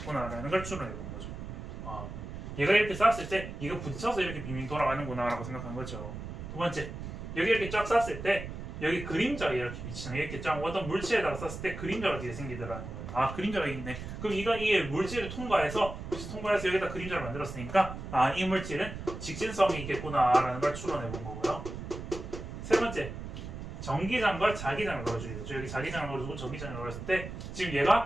걸 추론해 본 거죠. 얘가 이렇게 쐈을 때 이거 부딪혀서 이렇게 빙빙 돌아가는구나 라고 생각한 거죠. 두 번째, 여기 이렇게 쫙 쐈을 때 여기 그림자가 이렇게 비치는 이렇게 쫙 어떤 물체에다가 쐈을 때 그림자가 뒤에 생기더라는 거예요. 그림자가 있네. 그럼 이게 물질을 통과해서 여기다 그림자를 만들었으니까 이 물질은 직진성이 있겠구나라는 걸 추론해 본 거고요. 세 번째, 전기장과 자기장을 넣어주겠죠. 여기 자기장을 넣어주고 전기장을 넣었을 때 지금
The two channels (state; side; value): noise; right; rumble, 9 dB below the sound